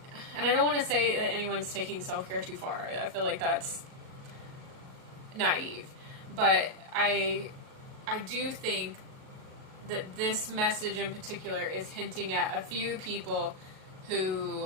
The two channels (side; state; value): left; late; 38 ms